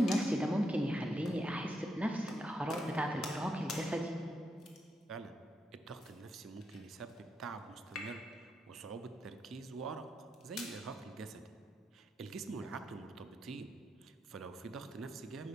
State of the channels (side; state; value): both; normal; correlation 0.82